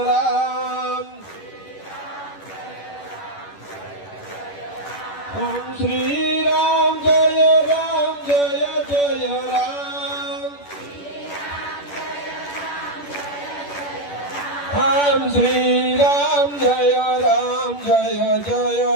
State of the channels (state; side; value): late; right; 10 ms